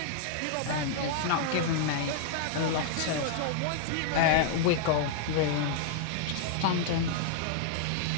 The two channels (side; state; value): both; different; correlation -0.01